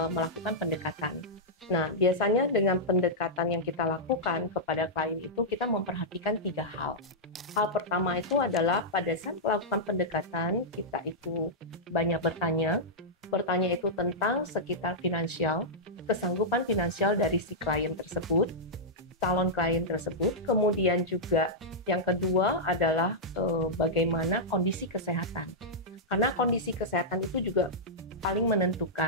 melakukan pendekatan. Nah, biasanya dengan pendekatan yang kita lakukan kepada klien itu kita memperhatikan 3 hal. Hal pertama itu adalah pada saat melakukan pendekatan kita itu banyak bertanya itu tentang sekitar finansial, kesanggupan finansial dari si klien tersebut, calon klien tersebut. Kemudian juga yang kedua adalah bagaimana kondisi kesehatan. Karena kondisi kesehatan itu juga paling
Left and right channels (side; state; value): both; normal; correlation -0.10